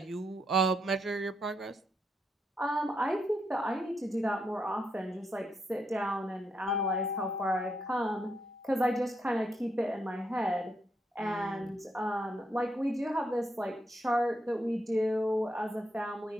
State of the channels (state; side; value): normal; both; correlation 0.80